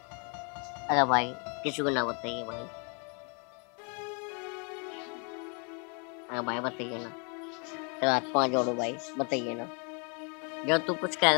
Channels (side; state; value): right; quieter; 36.3 dB